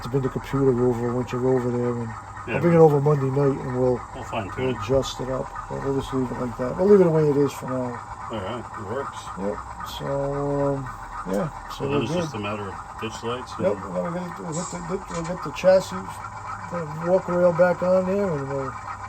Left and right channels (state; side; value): identical; both; correlation 1.00